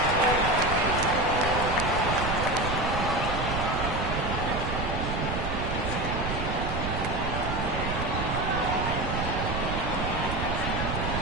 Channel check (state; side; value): noise; right; rumble, 3 dB below the sound